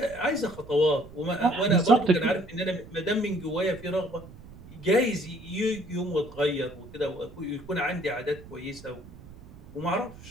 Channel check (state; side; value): noise; right; rumble, 19 dB below the sound